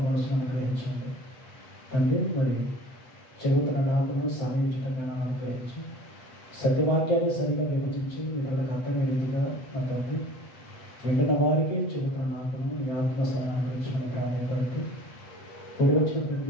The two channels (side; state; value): right; late; 7.7 ms